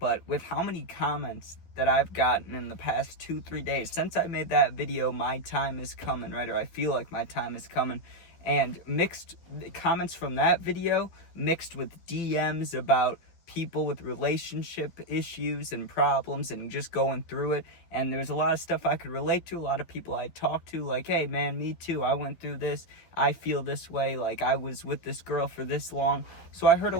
with how many comments that I've gotten in the past 2-3 days, since I made that video, my time is coming, right? Or I feel like my time is coming. And mixed comments from that video, mixed with DMs about people with relationship issues and problems and just going through it. And there's a lot of stuff I could relate to, a lot of people I talked to, like, hey man, me too, I went through this, I feel this way, like I was with this girl for this long. So I heard a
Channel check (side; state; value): right; late; 12 ms